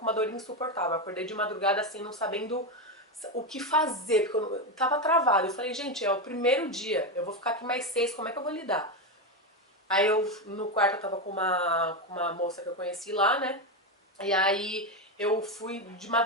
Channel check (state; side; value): normal; both; correlation 0.11